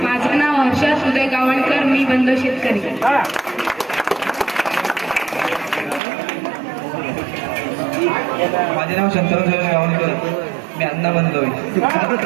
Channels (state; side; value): drops out; left; at 6.0 s